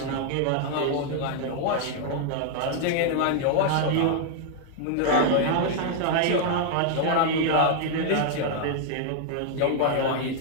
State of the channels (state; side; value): different; both; correlation 0.00